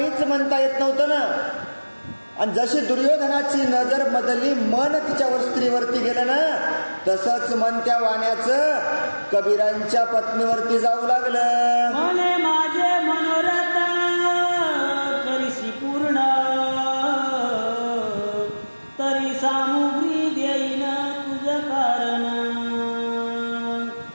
म्हणता येत नव्हतं ना. आणि जशी दुर्योधनाची नजर बदलली, मन तिच्या स्त्रीवरती गेलं ना, तसंच मन त्या वाण्याचं कबीरांच्या पत्नीवरती जाऊ लागलं. मने माझे मनोरथ करीशी पूर्ण तरी सामुग्री देईन तुझ कारण.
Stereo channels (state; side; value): inverted; both; correlation -1.00